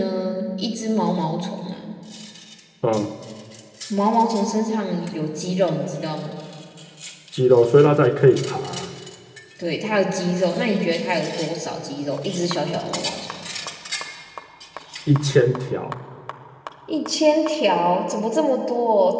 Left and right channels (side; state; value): both; identical; correlation 1.00